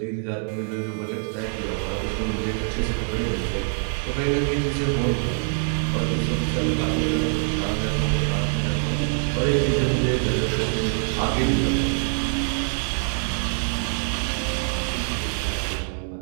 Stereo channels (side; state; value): left; silent; 62 dB below the other